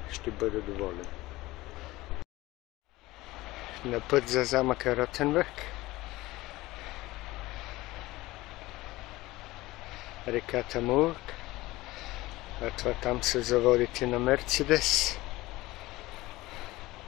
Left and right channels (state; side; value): quieter; right; 19.0 dB